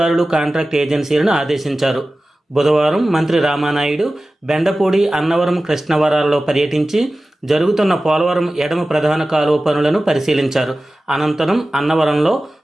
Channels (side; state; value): both; normal; correlation 0.96